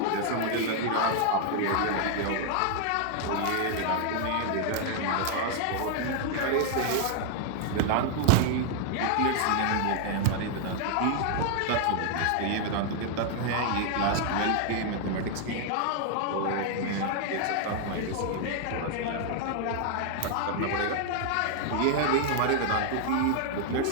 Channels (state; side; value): different; both; correlation 0.00